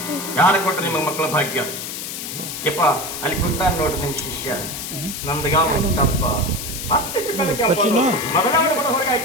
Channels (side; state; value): left; noise; hiss, 7 dB below the sound